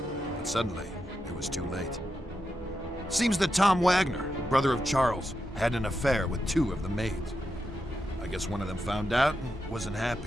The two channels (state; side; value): normal; both; correlation 0.86